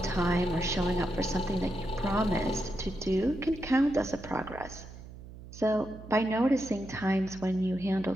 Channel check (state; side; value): noise; right; hum, 15 dB below the sound